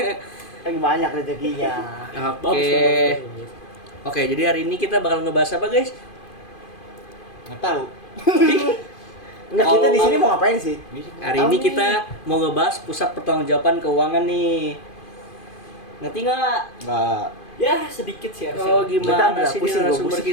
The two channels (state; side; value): late; right; 2.5 ms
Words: Lagi banyak rezekinya. Oke. Oke, jadi hari ini kita bakal ngebahas apa guys? Nggak tahu. Enggak, kita di sini mau ngapain sih? Hari ini kita mau ngebahas pusat pertanggungjawaban keuangan nih. Ngerti nggak? Enggak. Ya, sedikit sih harusnya. Oh, gimana Bentar, sih ini pusing, narasumber pusing.